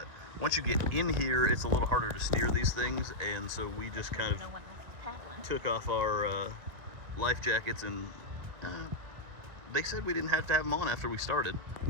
once you get in here, it's a little harder to steer these things, and so we just kind of took off our life jackets, and they said we didn't have to have them on after we started.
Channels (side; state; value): left; late; 2.0 ms